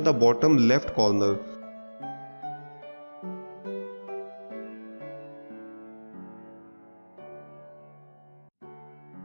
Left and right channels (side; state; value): both; inverted; correlation -1.00